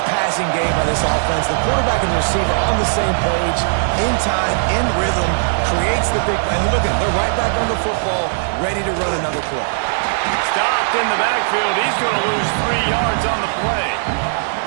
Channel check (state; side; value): silent; left; digital silence